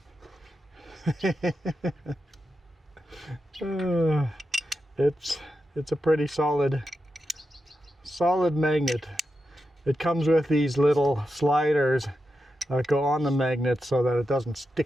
It's a pretty solid magnet. It comes with these little sliders that go on the magnet so that it doesn't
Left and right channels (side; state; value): both; normal; correlation 0.88